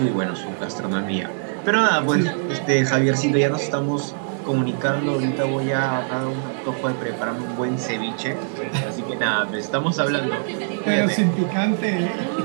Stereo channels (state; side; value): silent; left; digital silence